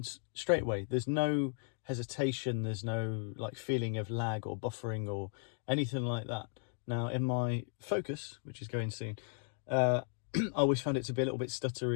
straight away. There's no hesitation. There's no like feeling of lag or buffering or anything like that. Now, in my Focus, which is going soon, I always found it to be a little bit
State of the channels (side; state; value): right; silent; 54 dB below the other